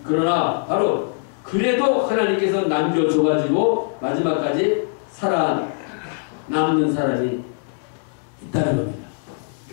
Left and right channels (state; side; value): silent; right; 64 dB below the other